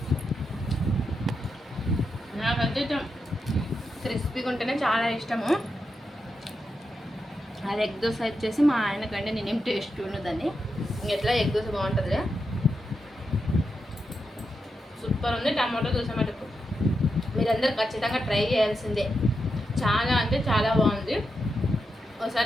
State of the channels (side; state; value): both; normal; correlation 0.86